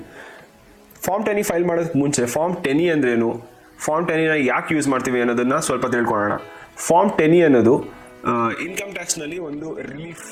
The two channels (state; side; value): identical; both; correlation 1.00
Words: ಫಾರ್ಮ್ 10E ಫೈಲ್ ಮಾಡೋದಕ್ಕೆ ಮುಂಚೆ ಫಾರ್ಮ್ 10E ಅಂದ್ರೇನು, ಫಾರ್ಮ್ 10Eನ ಯಾಕೆ ಯೂಸ್ ಮಾಡ್ತೀವಿ ಅನ್ನೋದನ್ನು ಸ್ವಲ್ಪ ತಿಳ್ಕೊಳ್ಳೋಣ. ಫಾರ್ಮ್ 10E ಅನ್ನೋದು ಇನ್ಕಮ್ ಟ್ಯಾಕ್ಸ್ನಲ್ಲಿ ಒಂದು ರಿಲೀಫ್